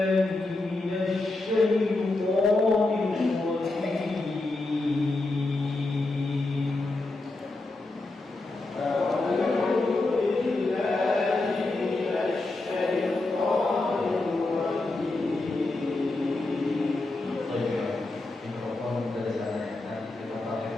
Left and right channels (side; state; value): right; quieter; 3.0 dB